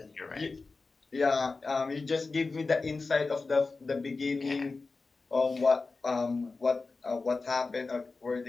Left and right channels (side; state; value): right; quieter; 3.9 dB